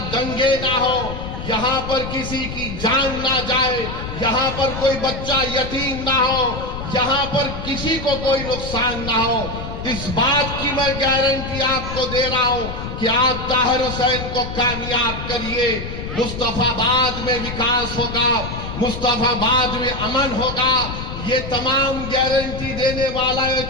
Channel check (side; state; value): left; noise; rumble, 7 dB below the sound